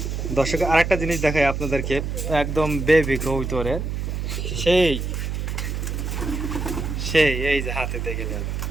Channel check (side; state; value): right; noise; hum, 3 dB below the sound